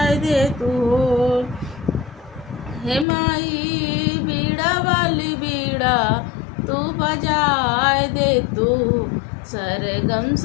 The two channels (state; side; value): drops out; right; at 3.1 s